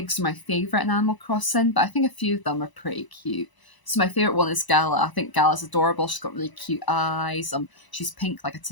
are my favourite in Animal Crossing, but I think a few of them are pretty cute. So my favourite one is Gala. I think Gala's adorable. She's got really cute eyes. She's pink like a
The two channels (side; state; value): right; late; 1.0 ms